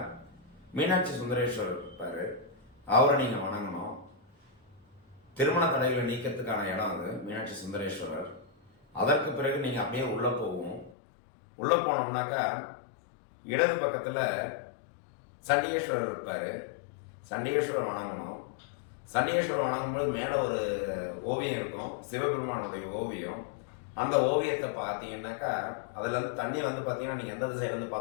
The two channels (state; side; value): drops out; right; at 11.0 s